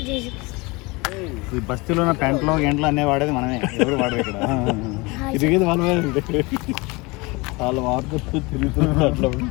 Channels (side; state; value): right; quieter; 25.3 dB